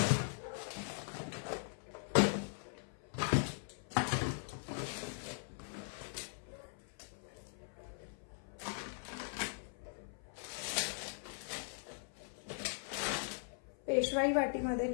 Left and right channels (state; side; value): silent; right; 51 dB below the other